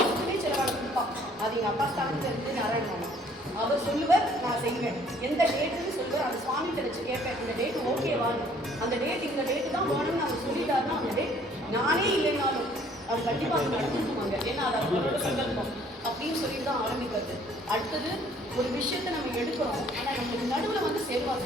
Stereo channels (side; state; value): both; normal; correlation 0.59